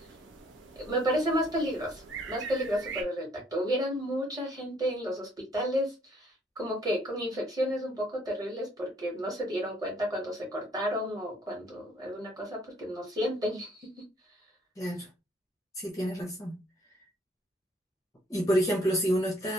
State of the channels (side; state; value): both; normal; correlation 0.64